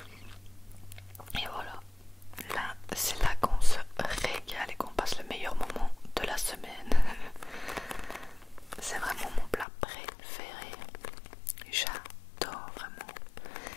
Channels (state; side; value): drops out; right; at 9.7 s